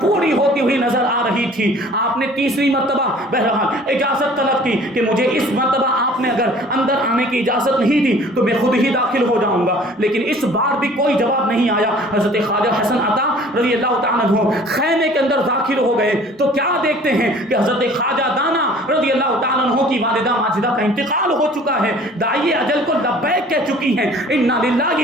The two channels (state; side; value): normal; both; correlation 0.50